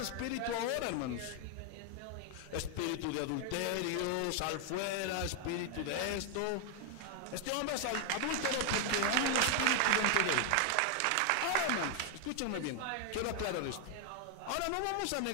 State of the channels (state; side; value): different; both; correlation 0.00